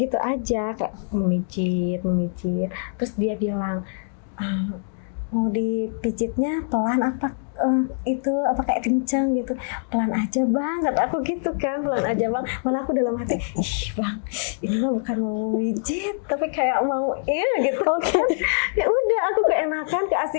aja, kayak memijit. Terus dia bilang, mau dipijitnya pelan apa itu apa kayak kencang gitu, pelan aja bang, kata aku gitu kan, pelan aja bang. Malah aku dalam hati, ih bang, ini mah bukan mau mijit tapi kayak mau gitu kan. Ya udah aku keenakan,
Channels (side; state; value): right; silent; digital silence